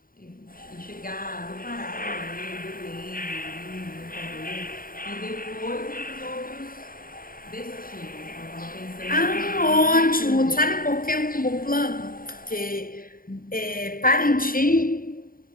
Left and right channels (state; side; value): late; right; 0.41 ms